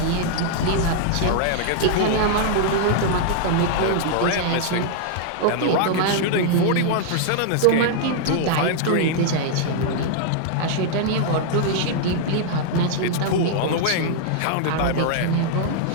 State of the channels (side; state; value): both; different; correlation -0.01